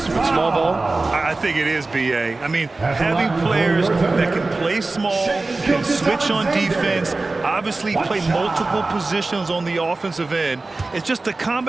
with small ball? I think it is, B.A. I mean, having players that can play small, can switch on defense, obviously play multiple positions on the offensive end. It's just a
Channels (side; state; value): left; quieter; 3.4 dB